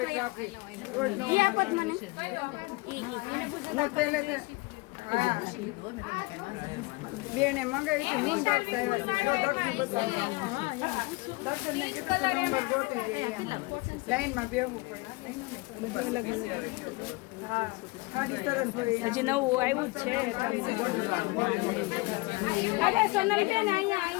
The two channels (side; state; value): right; quieter; 24.6 dB